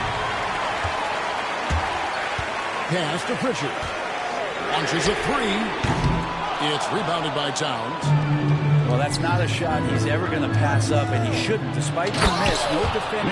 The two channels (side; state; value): both; identical; correlation 1.00